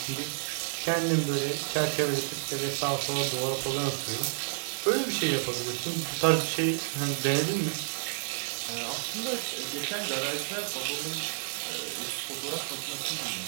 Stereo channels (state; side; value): silent; left; 58 dB below the other